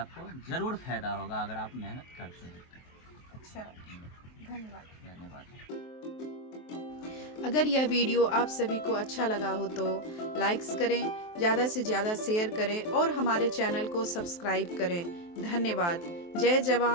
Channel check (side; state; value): right; late; 23 ms